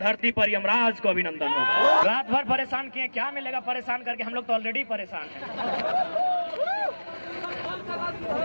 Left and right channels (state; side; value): inverted; both; correlation -1.00